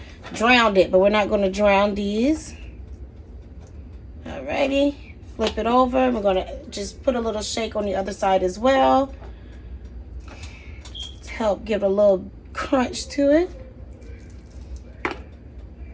drown it, but we're not going to drown these. Alrighty, flip it over. We're going to just put a little shake on the other side as well to help give a little crunch to it.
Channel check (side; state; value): both; identical; correlation 1.00